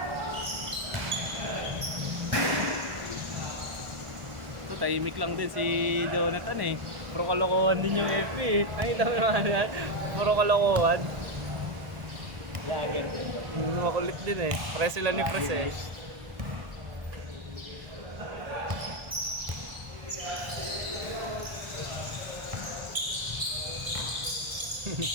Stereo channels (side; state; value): left; late; 1.5 ms